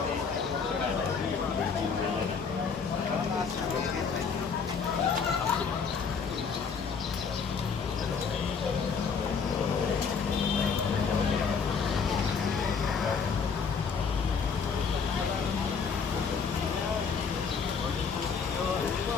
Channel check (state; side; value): quieter; right; 5.7 dB